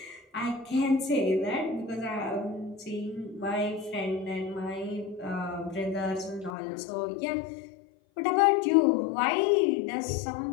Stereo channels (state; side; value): drops out; right; at 6.5 s